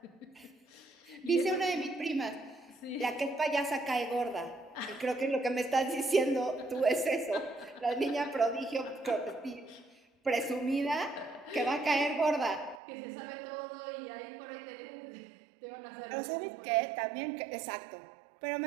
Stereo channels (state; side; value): drops out; left; at 12.8 s